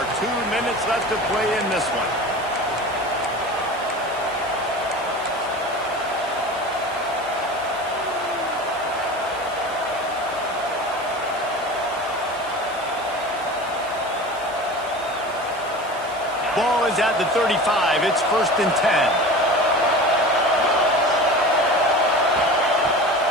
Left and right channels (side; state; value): right; noise; hiss, 20 dB below the sound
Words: 2 minutes left to play in this one. Ball is at the 35. It's 1st and 10.